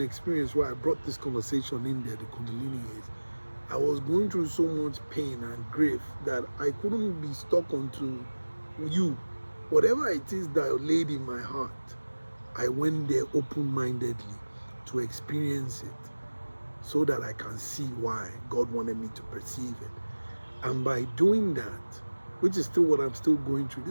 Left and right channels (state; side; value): inverted; both; correlation -1.00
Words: where I brought this conversation in there, the Kundalini, is I was going through so much pain and grief that I couldn't be stuck onto you. Whatever it is that laid in my heart, I went there open-mindedly to experience it, so that I can see why God wanted me to perceive it. And by doing that, which is still what I'm still going through,